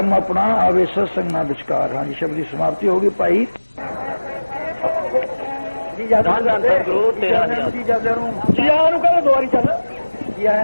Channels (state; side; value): inverted; both; correlation -1.00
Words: अपना आवे सत्संग ना विचकार। हाँ जी शब्द की समाप्ति होगी भाई। ਜੀ ਜਾਂਦੇ ਸਤਿਗੁਰੂ ਤੇਰਾ ਜੀ ਜਾਂਦੇ ਨੂੰ ਜੀ ਆਇਆਂ ਨੂੰ ਕਹਿੰਦੇ ਦੁਆਰੀ ਚੱਲ ਜੀ